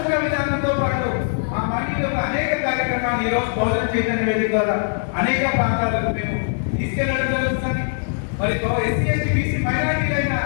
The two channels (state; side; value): silent; right; digital silence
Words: విధానంతో పాటు ఆ మానవుడి యొక్క అనేక కార్యక్రమాలు ఈ రోజు బహుజన చైతన్య వేదిక ద్వారా అనేక ప్రాంతాలకు మేము తీసుకెళ్లడం జరుగుతుంది. మరి ఎస్సీ, ఎస్టీ, బీసీ, మైనారిటీలైన